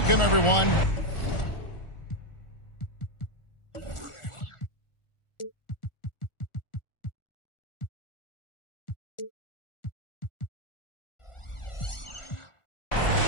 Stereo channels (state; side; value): late; right; 1.4 ms